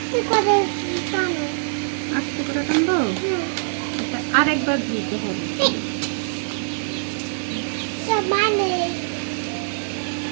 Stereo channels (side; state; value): left; silent; digital silence